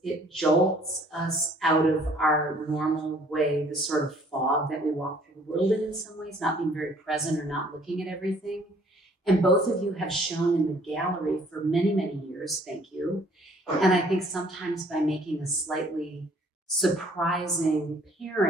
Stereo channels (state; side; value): normal; both; correlation 0.58